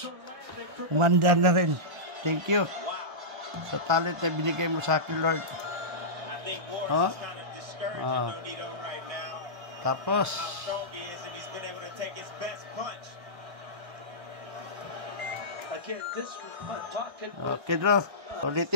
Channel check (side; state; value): left; late; 1.3 ms